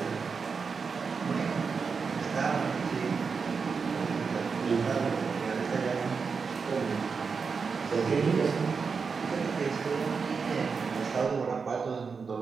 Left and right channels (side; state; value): left; quieter; 5.3 dB